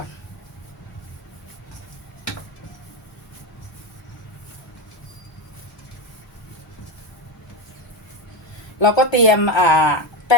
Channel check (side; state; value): both; normal; correlation 0.15